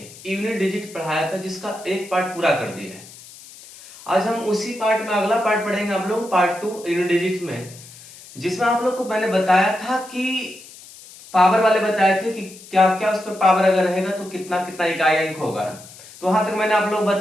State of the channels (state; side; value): noise; left; hiss, 19 dB below the sound